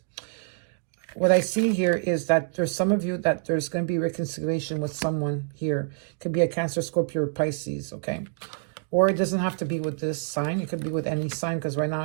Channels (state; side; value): silent; left; digital silence